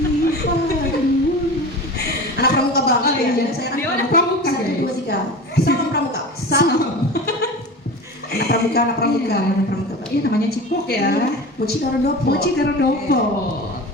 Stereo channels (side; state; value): both; normal; correlation 0.32